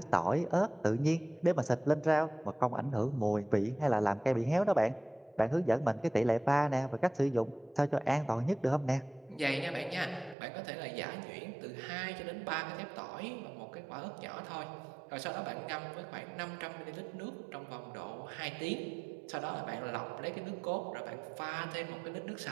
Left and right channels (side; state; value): left; drops out; at 10.4 s